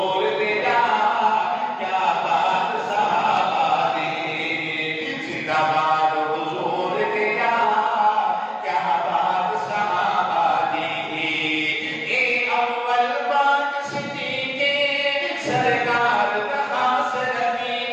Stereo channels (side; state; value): both; identical; correlation 1.00